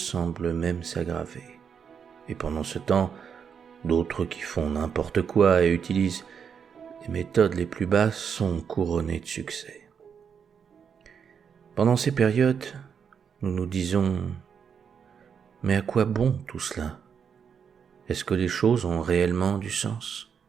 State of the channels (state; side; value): quieter; left; 7.1 dB